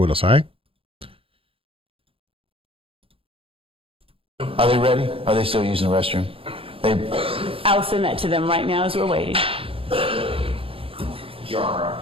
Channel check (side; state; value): left; late; 0.27 ms